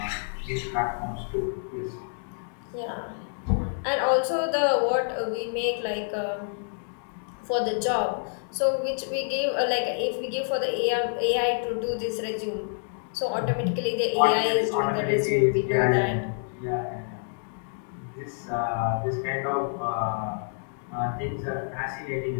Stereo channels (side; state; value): right; silent; digital silence